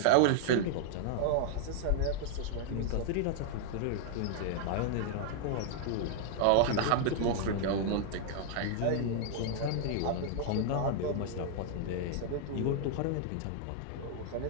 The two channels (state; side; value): different; both; correlation -0.01